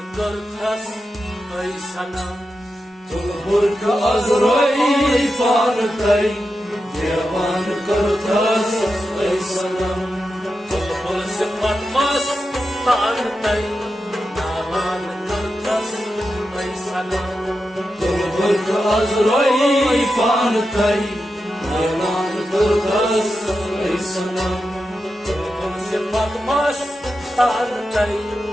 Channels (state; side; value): normal; both; correlation 0.89